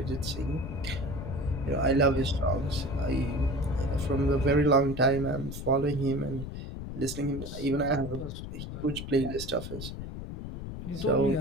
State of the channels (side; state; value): left; noise; rumble, 8 dB below the sound